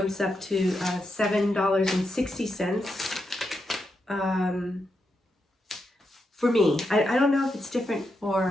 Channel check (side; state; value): both; normal; correlation 0.85